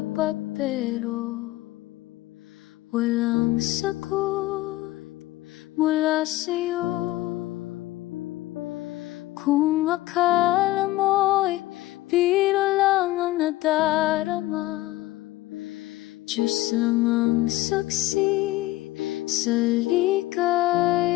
pero walang sagot mula sa'yo. Kung akala mo'y biro lang ang nadarama, Diyos lang ang saksi sa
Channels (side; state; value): right; quieter; 17.5 dB